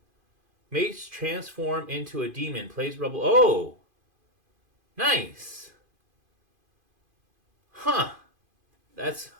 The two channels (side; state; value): left; late; 2.5 ms